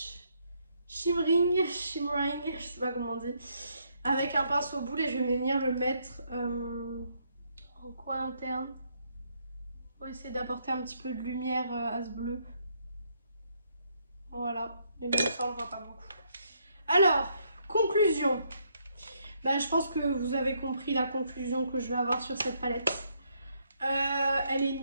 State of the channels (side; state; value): both; inverted; correlation -0.73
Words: Shimmering, je sais pas comment on dit, avec un pinceau boule et je vais venir le mettre en coin interne pour essayer d'apporter un petit peu de lumière à ce bleu. Voilà, mais même ça on le voit pas beaucoup. Alors, conclusion. Ben, je pense que vous avez compris la conclusion que je vais avoir sur cette palette. Elle est